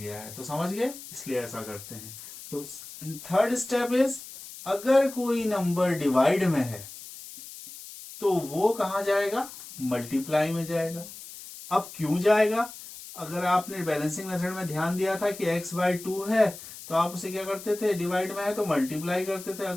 है। तो समझ गए, इसलिए ऐसा करते हैं। तो थर्ड स्टेप इज अगर कोई नंबर डिवाइड में है तो वो कहाँ जाएगा, मल्टीप्लाई में जाएगा। अब क्यों जाएगा, अगर आपने बैलेंसिंग मेथड में ध्यान दिया था कि x/2 है तो आप उसे क्या करते थे, डिवाइड में है तो मल्टीप्लाई करते थे।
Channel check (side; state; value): left; noise; hiss, 14 dB below the sound